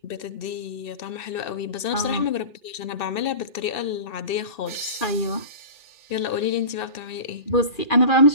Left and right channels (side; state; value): right; late; 2.7 ms